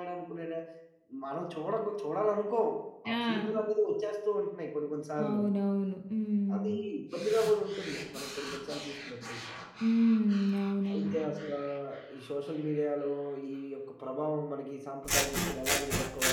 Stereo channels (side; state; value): both; identical; correlation 1.00